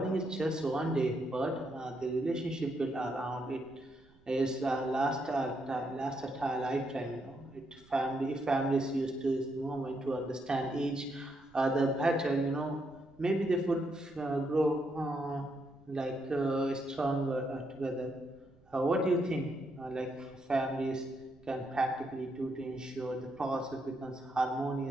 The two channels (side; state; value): right; noise; rumble, 29 dB below the sound